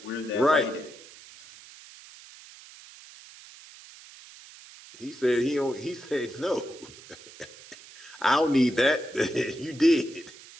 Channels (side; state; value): right; noise; hiss, 19 dB below the sound